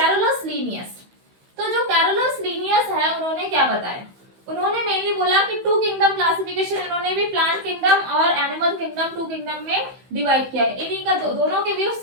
लीनियस। तो जो कैरोलस लीनियस है उन्होंने क्या बताया, उन्होंने मेनली बोला कि 2 किंगडम क्लासिफिकेशन, इन्होंने भी प्लांट किंगडम और एनिमल किंगडम 2 किंगडम में डिवाइड किया है। इन्हीं का दोनों के व्यू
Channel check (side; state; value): left; late; 15 ms